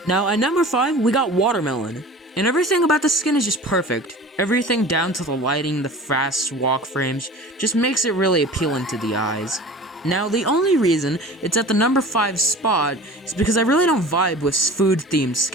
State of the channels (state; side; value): normal; both; correlation 0.39